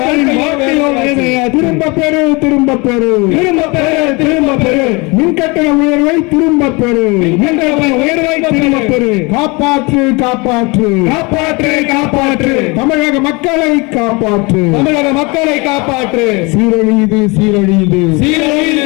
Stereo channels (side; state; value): right; quieter; 27.2 dB